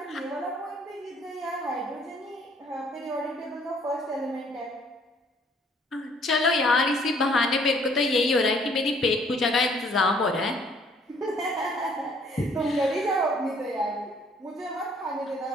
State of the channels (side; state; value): both; normal; correlation 0.61